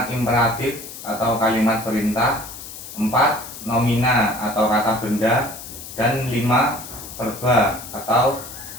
imperatif atau kalimat perintah, 4. Nomina atau kata benda, dan 5. Verba atau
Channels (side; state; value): left; noise; hiss, 12 dB below the sound